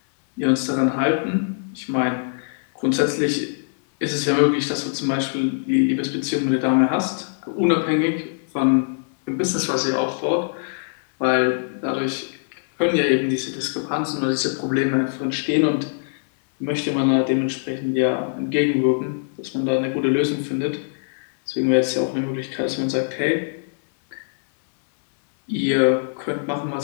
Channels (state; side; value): silent; right; 60 dB below the other